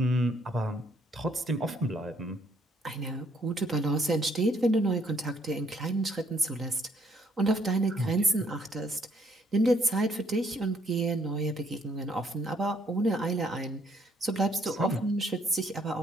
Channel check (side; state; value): both; normal; correlation 0.68